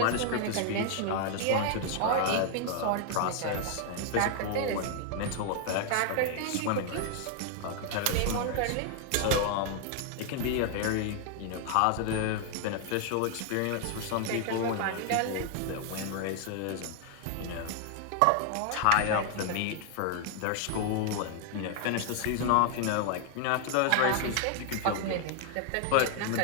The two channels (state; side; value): different; both; correlation 0.00